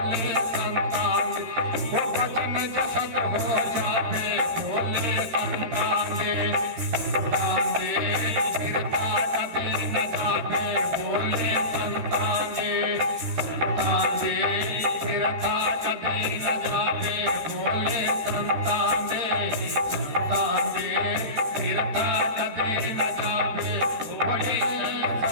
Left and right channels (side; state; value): left; late; 13 ms